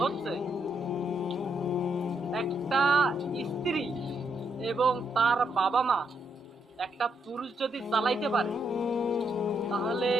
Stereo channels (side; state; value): both; normal; correlation 0.77